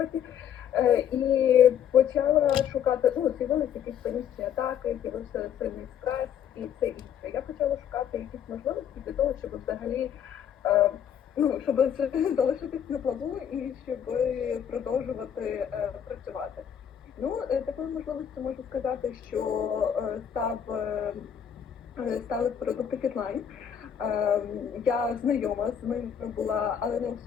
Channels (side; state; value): right; quieter; 8.8 dB